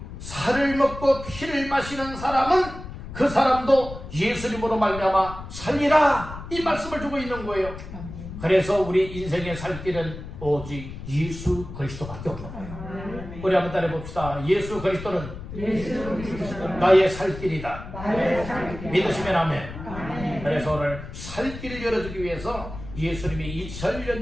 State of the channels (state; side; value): noise; left; rumble, 11 dB below the sound